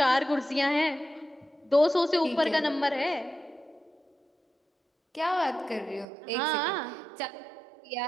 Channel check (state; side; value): drops out; left; at 6.1 s